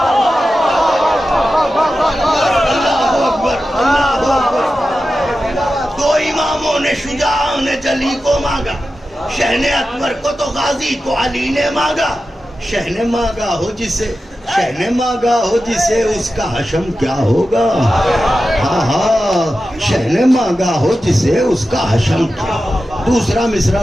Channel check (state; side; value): normal; both; correlation 0.92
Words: شجاع نے جلی کو مانگا، شہن اکبر کو تو غازی کو علی نے مانگا، شہن مانگا ہو جسے، شہن مانگا ہو جسے اس کا حشم کیا ہوگا، ہاں ہاں شہن مانگا ہو جسے اس کا حشم کیا ہوگا۔ دوسرا مصرع